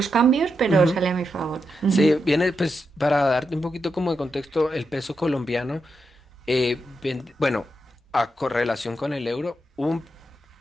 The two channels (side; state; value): both; normal; correlation 0.85